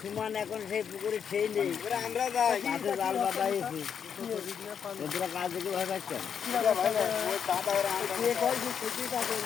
সমান এখন সেই পুকুরে সেই নেই আমরা যাই মাঠে জাল বাঁধাইছি তোরা কাজ দেখে ভয় পাচ্ছেন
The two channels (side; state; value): right; quieter; 7.6 dB